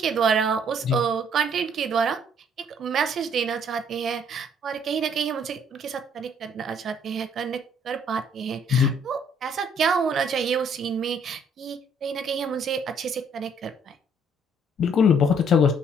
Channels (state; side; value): normal; both; correlation 0.63